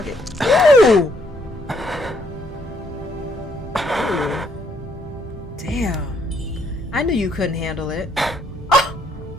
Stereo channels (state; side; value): normal; both; correlation 0.69